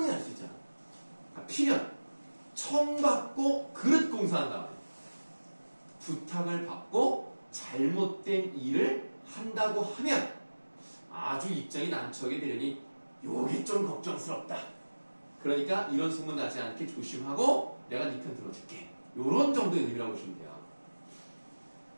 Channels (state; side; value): inverted; both; correlation -1.00